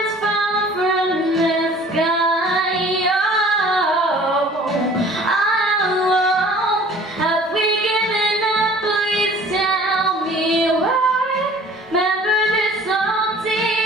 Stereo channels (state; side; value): normal; both; correlation 0.49